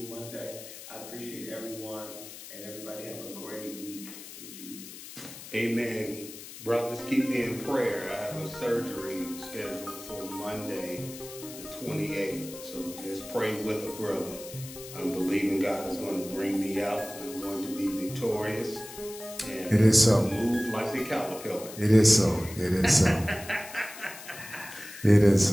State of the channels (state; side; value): noise; left; hiss, 14 dB below the sound